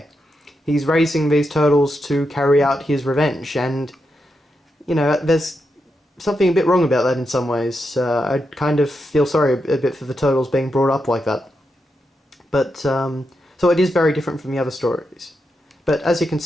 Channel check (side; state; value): both; normal; correlation 0.85